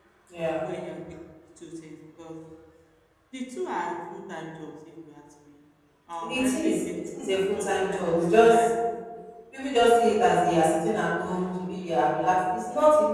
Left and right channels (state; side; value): identical; both; correlation 1.00